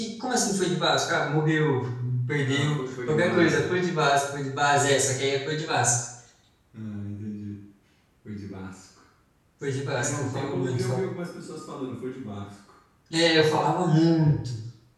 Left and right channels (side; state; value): both; identical; correlation 1.00